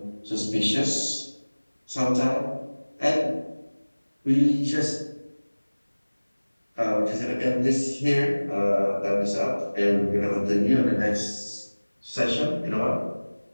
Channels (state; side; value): inverted; both; correlation -1.00